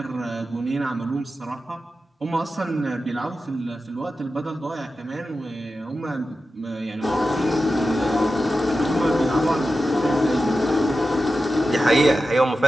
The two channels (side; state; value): both; normal; correlation 0.92